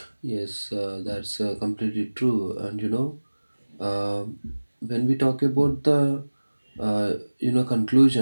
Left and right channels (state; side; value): inverted; both; correlation -1.00